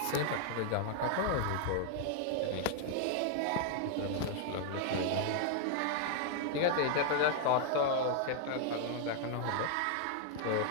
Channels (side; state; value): both; different; correlation 0.00